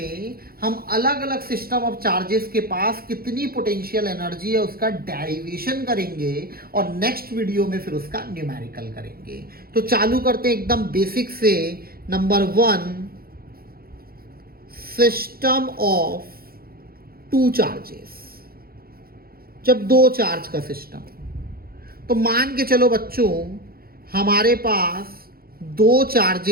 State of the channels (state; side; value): late; left; 0.44 ms